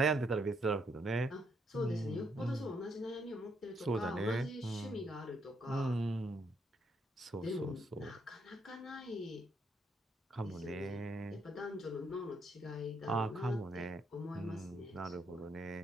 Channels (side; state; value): both; normal; correlation 0.74